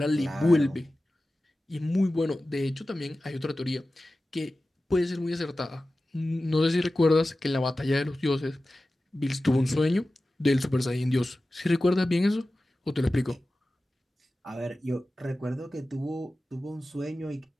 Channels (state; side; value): normal; both; correlation 0.95